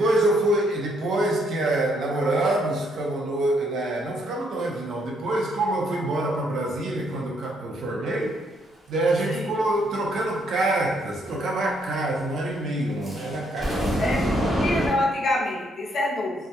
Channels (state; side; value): normal; both; correlation 0.72